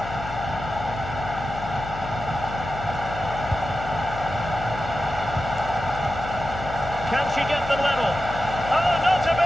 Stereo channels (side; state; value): left; noise; hum, 10 dB below the sound